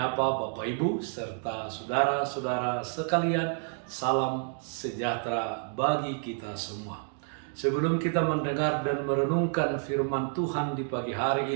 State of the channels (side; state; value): left; silent; 58 dB below the other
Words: Bapak Ibu serta saudara-saudara sekalian, salam sejahtera bagi kita semua. Sebelum kita mendengar dan merenungkan firman Tuhan di pagi hari